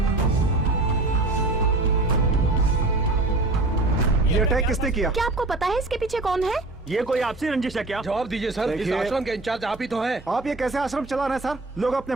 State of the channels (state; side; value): quieter; left; 3.0 dB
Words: ये अटैक किसने किया? क्या आपको पता है इसके पीछे कौन है? ये कोई आपसी रंजिश है क्या? जवाब दीजिए सर, इस आश्रम के इंचार्ज आप ही तो हैं। आप ये कैसे आश्रम चला रहे हैं सर? लोग अपने